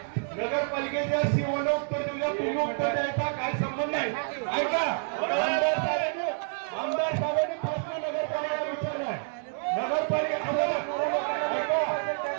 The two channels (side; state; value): left; silent; 59 dB below the other